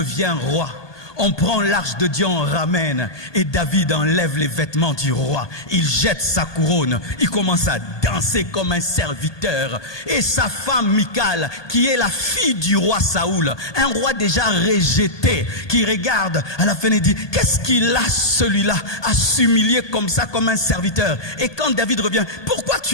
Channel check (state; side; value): late; right; 1.2 ms